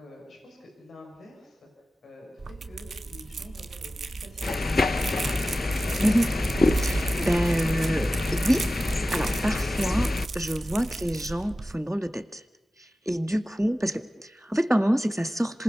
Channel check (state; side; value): normal; both; correlation 0.95